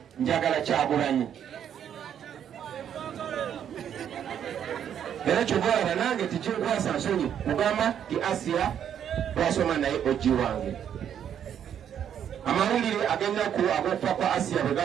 njagala Kyagulanyi. Era kyogolaba nange tikinkwasa nsonyi kugamba ti Asiya twasoma naye oji wange. Amawulire ag'ennaku ag'okufa kwa Asiya bwe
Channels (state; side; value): quieter; left; 9.2 dB